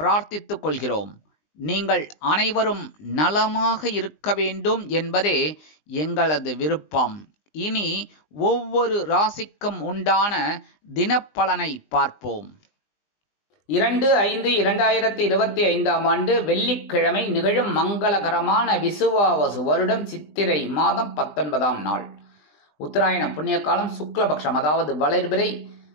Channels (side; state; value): right; late; 20 ms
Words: கொள்கிறோம். நீங்கள் அனைவரும் நலமாக இருக்க வேண்டும் என்பதே எங்களது விருப்பம். இனி ஒவ்வொரு ராசிக்கும் உண்டான தினப்பலனை பார்ப்போம். 2/5/2025 வெள்ளிக்கிழமை நிகழும் மங்களகரமான விசுவாவசு வருடம் சித்திரை மாதம் 19ஆம் நாள். உத்தராயண புண்ணிய காலம் சுக்லபக்ஷம், அதாவது வளர்பிறை